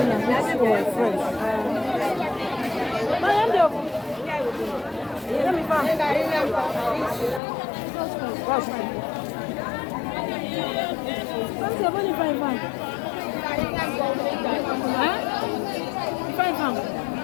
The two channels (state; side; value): drops out; right; at 7.4 s